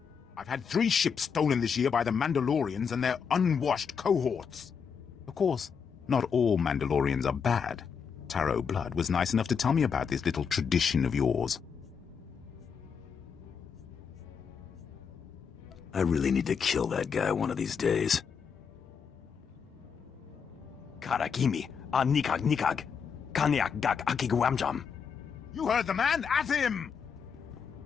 I've had 3 ships stolen this year by the Mandalorians and their unwashed cohorts. Of course, not all Mandalorians are bad. Taro Blood was nice enough to tell me about this little tradition of yours. I really need to kill that guy one of these days. Karakimi, nikag nikag, kaniak gak akiguamjam. You heard the man, at him!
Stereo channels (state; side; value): quieter; right; 6.5 dB